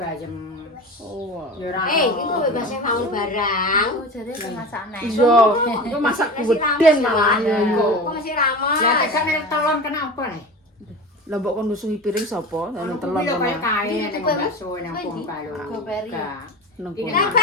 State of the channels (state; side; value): normal; both; correlation 0.31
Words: Oh. Ya ora. Iku bebas bangun barang. Oh jare pemasakne. Iya, itu masak geden malah ya iku. Kok masih ramas. Ya tekan telon kenapa nih? Lah mbok kon nusuhi piring sapa? Anu telon Kuwi lho kaya kono. kae ning bakso nang Bongkalo. Goperi. Nang kono.